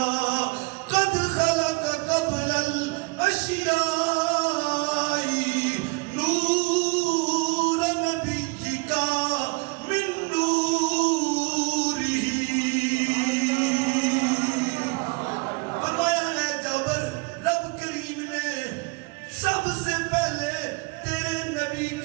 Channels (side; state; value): left; quieter; 28.4 dB